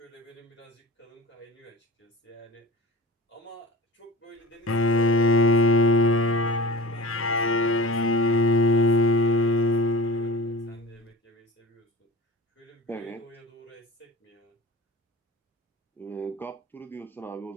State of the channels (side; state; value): both; normal; correlation 0.37